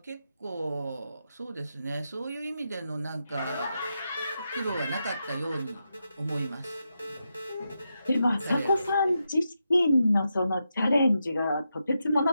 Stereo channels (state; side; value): inverted; both; correlation -0.86